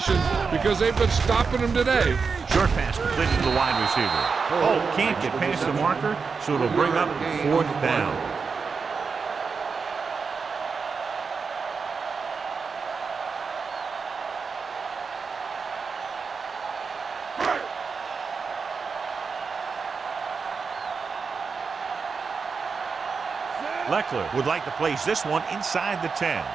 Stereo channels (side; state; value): left; quieter; 5.2 dB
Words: because they've been stopping them today. Short pass completed to the wide receiver. Oh, can't get past the marker, so it'll bring up fourth down. Leckler would like to place this one inside the 10.